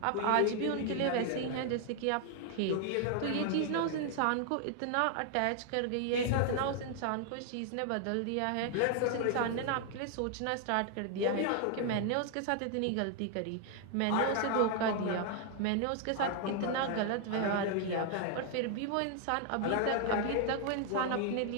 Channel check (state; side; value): different; both; correlation 0.00